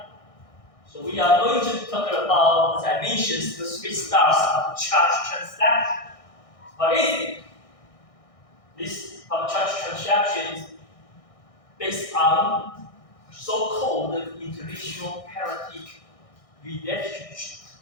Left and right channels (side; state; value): right; late; 1.6 ms